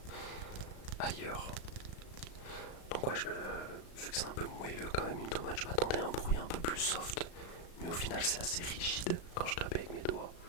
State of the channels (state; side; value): late; right; 36 ms